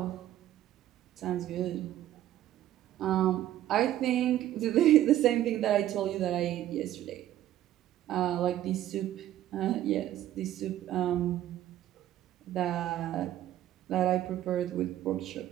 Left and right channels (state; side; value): quieter; left; 12.9 dB